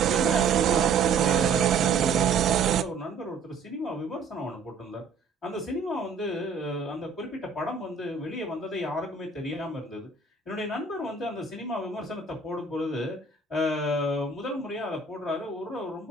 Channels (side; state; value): left; quieter; 4.6 dB